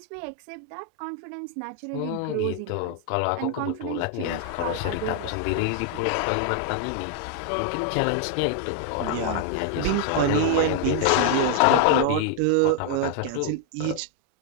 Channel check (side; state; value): both; different; correlation 0.00